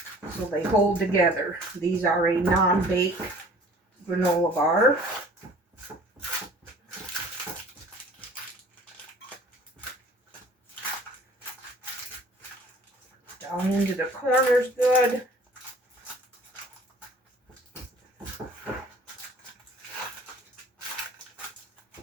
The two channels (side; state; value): both; normal; correlation 0.50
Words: so they hold together. These are a non-bake granola bar. Down into the corners good.